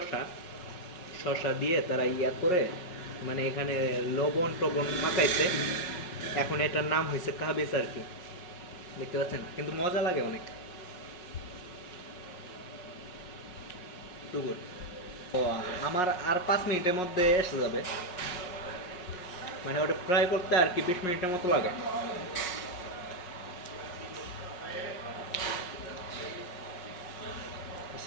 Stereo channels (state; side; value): late; right; 5.5 ms